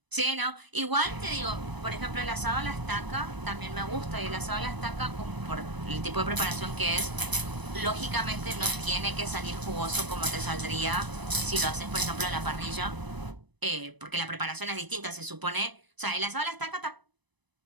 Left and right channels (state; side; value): late; left; 1.0 ms